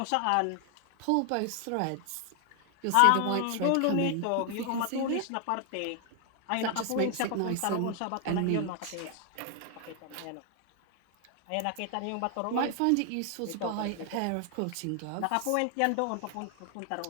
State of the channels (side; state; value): both; different; correlation 0.00